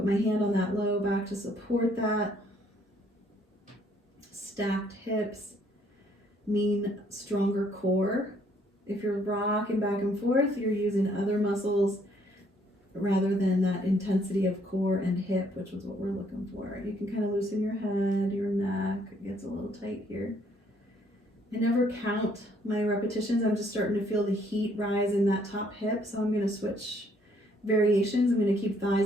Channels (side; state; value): both; normal; correlation 0.66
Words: my hand on that low back to support that. Stacked hips mean stronger core. If you're rocking back and forth, you're using other muscles rather than that intensity of core and hip, which is what we're looking for. You can kind of loosen your head, your neck. It gets a little tight here. I never count my repetitions. I'm just starting to feel the heat rise in that top hip. So I'm going to switch variations. I'm going to keep